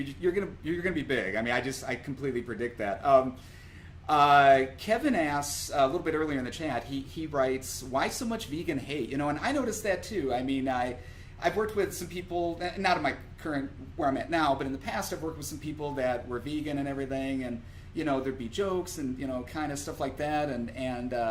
you're gonna be big. I mean, I completely predict that. Kevin asks a little bit earlier in the chat. He writes, "Why so much vegan hate?" You know, and I noticed that too. I mean, I've worked with some people, not in my current where I'm at now, but in the past I've worked with some people that were vegan and everything, and you know, there'd be jokes and you know, kind of stuff like that, and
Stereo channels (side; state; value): both; identical; correlation 1.00